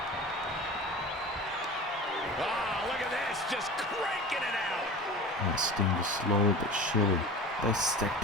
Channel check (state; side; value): normal; both; correlation 0.36